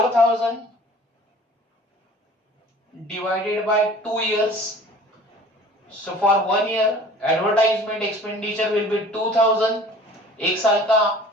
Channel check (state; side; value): normal; both; correlation 0.46